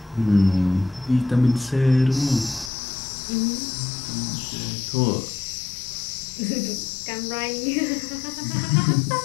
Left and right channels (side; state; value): right; drops out; at 2.7 s